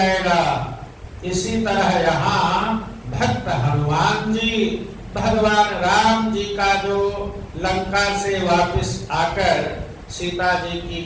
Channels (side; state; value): both; identical; correlation 1.00